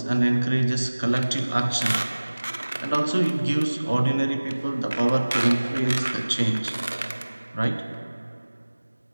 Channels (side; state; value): both; inverted; correlation -1.00